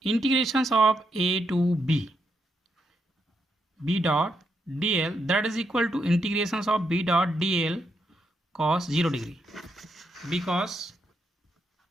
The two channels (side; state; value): both; normal; correlation 0.80